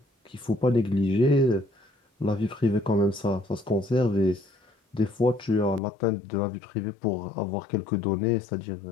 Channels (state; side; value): drops out; right; at 5.8 s